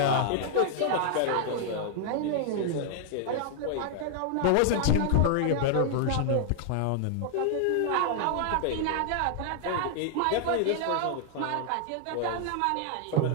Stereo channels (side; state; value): both; different; correlation 0.00